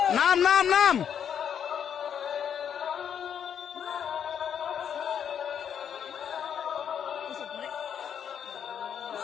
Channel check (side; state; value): right; quieter; 8.4 dB